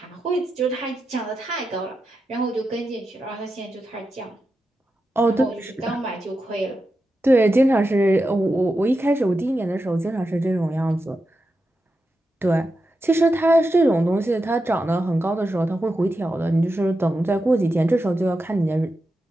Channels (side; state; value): both; normal; correlation 0.89